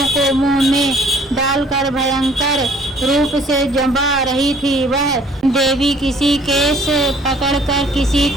को मुंह में डालकर भयंकर रूप से जमा रही थी। वह देवी किसी केस पकड़कर, किसी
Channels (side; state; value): both; normal; correlation 0.56